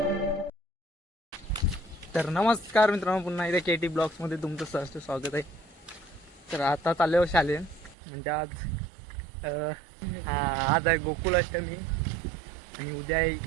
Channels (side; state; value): left; drops out; at 8.0 s